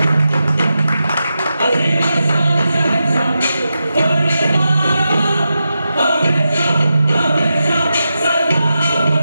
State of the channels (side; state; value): both; inverted; correlation -0.89